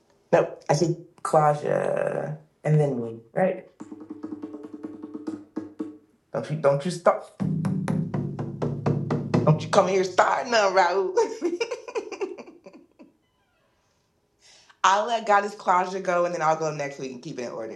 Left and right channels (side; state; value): both; identical; correlation 1.00